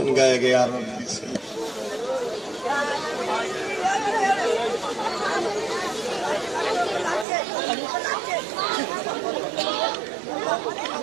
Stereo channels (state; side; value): drops out; left; at 7.2 s